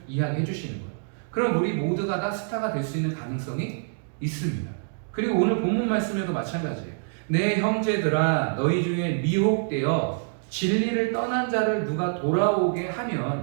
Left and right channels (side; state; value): left; silent; digital silence